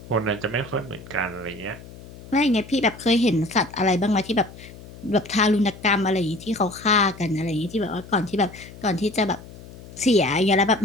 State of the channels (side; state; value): left; noise; hum, 17 dB below the sound